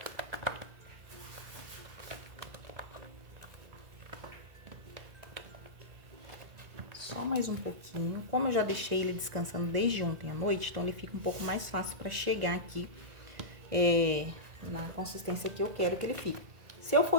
Só mais um pouquinho. Como eu já deixei ele descansando desde ontem à noite, então ele fica um pouco mais fácil para chegar aqui na consistência que eu quero que ele fique. Se eu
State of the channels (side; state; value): left; late; 1.9 ms